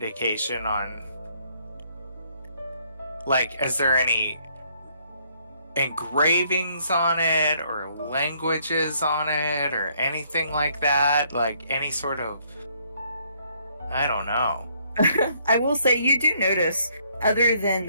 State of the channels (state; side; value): inverted; both; correlation -0.68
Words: on, like, is there any engravings on it or languages on it or anything like that? Like, any sort of, I don't know. I will say you do notice, other than